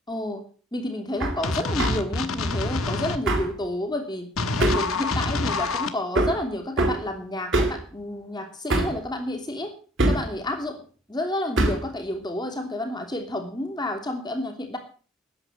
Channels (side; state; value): both; normal; correlation 0.59